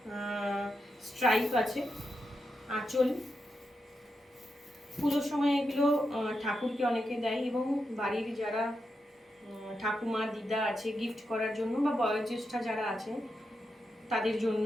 স্ট্রাইপ আছে। আঁচল, পুজোর সময় এগুলো ঠাকুরকে অনেকে দেয় এবং বাড়ির যারা ঠাকুমা দিদা আছে গিফট করার জন্য, বা বয়োজ্যেষ্ঠা যারা আছে তাদের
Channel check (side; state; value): both; normal; correlation 0.86